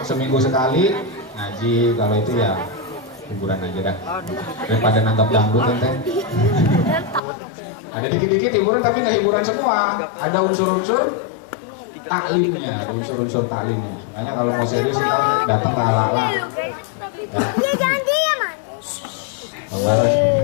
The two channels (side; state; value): right; drops out; at 7.2 s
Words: seminggu sekali ngaji. Kalau itu ya hiburan aja dah, daripada nangkap dangdut ente. Ada dikit-dikit hiburan tapi nggak hiburan semua. Ada unsur-unsur taklimnya, ada unsur-unsur taklimnya. Makanya kalau mau serius kita datang ke ala-ala. Dia jangan diam,